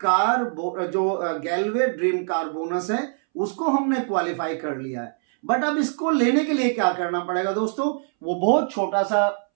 कार जो गैलवे ड्रीम कार बोनस है उसको हमने क्वालिफाई कर लिया है। बट अब इसको लेने के लिए क्या करना पड़ेगा दोस्तों, वो बहुत छोटा सा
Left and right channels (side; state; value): left; silent; 63 dB below the other